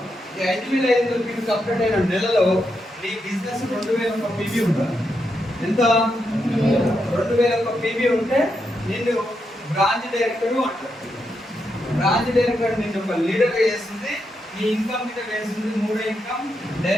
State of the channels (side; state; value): both; normal; correlation 0.83